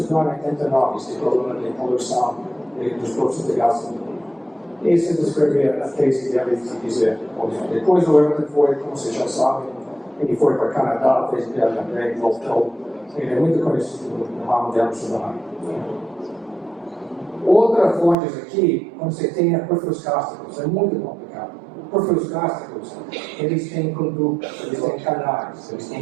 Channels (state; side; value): drops out; left; at 18.2 s